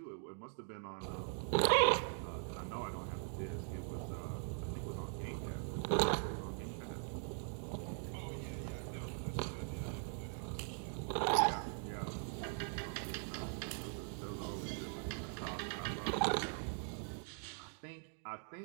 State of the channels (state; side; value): silent; left; 50 dB below the other